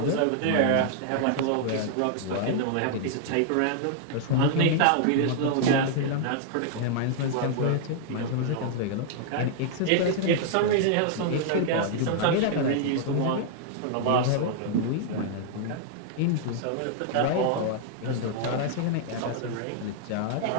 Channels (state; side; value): different; both; correlation -0.01